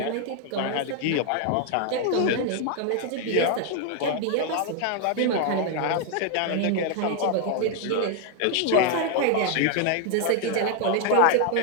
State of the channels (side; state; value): both; different; correlation 0.00